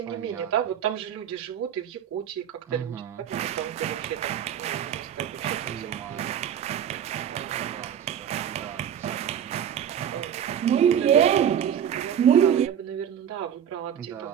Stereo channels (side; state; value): left; quieter; 9.2 dB